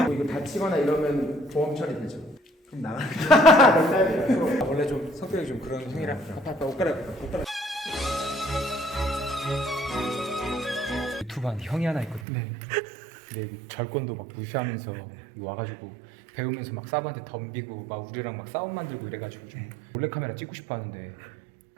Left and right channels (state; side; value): drops out; left; at 12.2 s